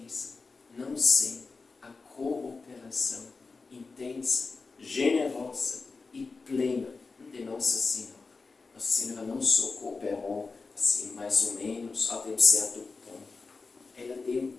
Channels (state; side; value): quieter; right; 4.2 dB